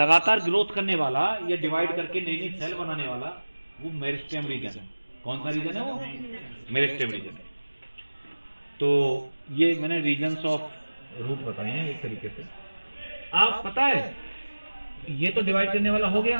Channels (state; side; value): inverted; both; correlation -1.00